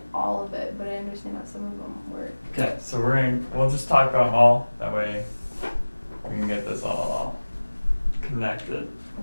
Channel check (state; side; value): inverted; both; correlation -1.00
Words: all of it, but I understand how some of them work. Okay, so we'll just talk about them all. That way we can get this all connected.